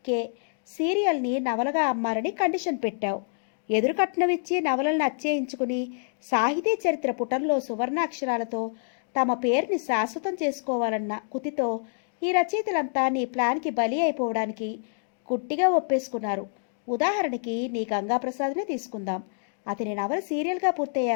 సీరియల్ని నవలగా అమ్మాలని కండిషన్ పెట్టావు. ఎదురు కట్నం ఇచ్చి నవలలను అచ్చేయించుకుని సాహితీ చరిత్ర పుటంలో సువర్ణాక్షరాలతో తమ పేరుని శాశ్వతం చేసుకోవాలన్న కుతితో ఈ రచయితలంతా నీ ప్లాన్కి బలి అయిపోవడానికి గుట్టిగా ఒప్పేసుకున్నారు. ఉదాహరణకి నీ గంగాప్రసాద్నే తీసుకుందాం. అతని నవల సీరియల్గా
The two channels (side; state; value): right; silent; digital silence